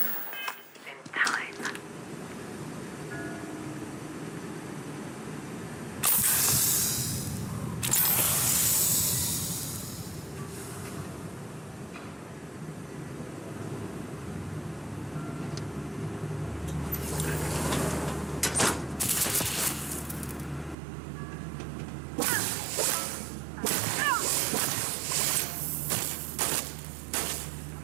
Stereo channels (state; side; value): drops out; left; at 20.8 s